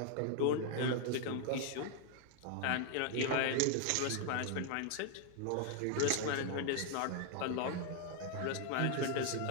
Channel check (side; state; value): both; different; correlation 0.00